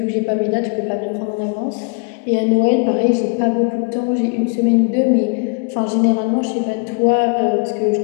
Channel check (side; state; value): right; quieter; 36.1 dB